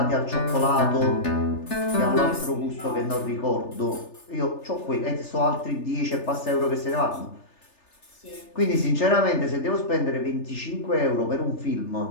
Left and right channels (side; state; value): right; late; 3.3 ms